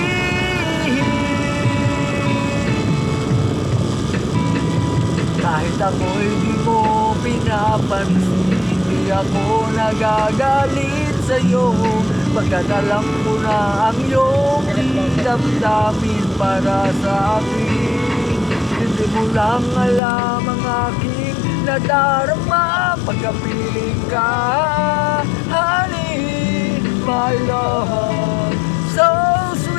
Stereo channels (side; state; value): right; drops out; at 20.0 s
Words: Kahit ako'y di mo pinapansin, di ako nagagalit sa'yo. Pagkat alam ko na ang iyong damdamin para sa akin. Hindi mo lang alam ang aking nadarama pagkapiling ka. Honey, my love, so